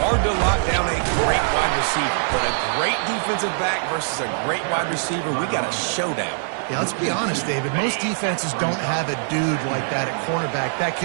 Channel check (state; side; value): silent; left; digital silence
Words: to lock down a great wide receiver. But a great defensive back versus a great wide receiver, we got a showdown. Yeah, let's be honest, David. Most defenses don't have a dude like that at cornerback that